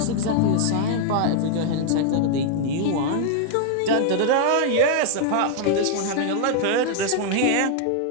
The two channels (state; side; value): different; both; correlation 0.00